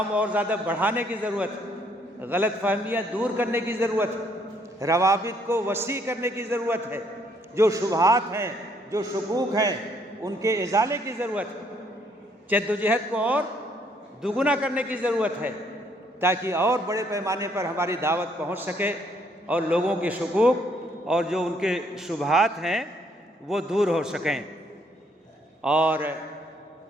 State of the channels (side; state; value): both; normal; correlation 0.68